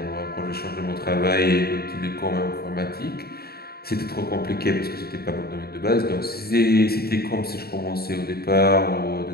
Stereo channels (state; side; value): late; right; 0.45 ms